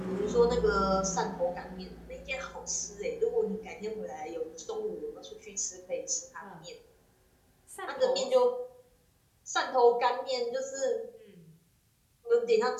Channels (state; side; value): identical; both; correlation 1.00